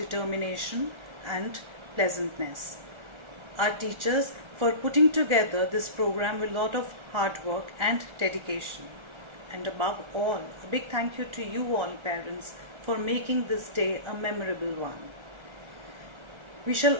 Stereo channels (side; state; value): left; late; 1.3 ms